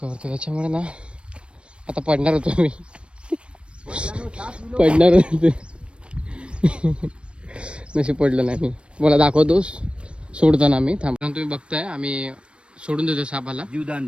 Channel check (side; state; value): left; late; 0.058 ms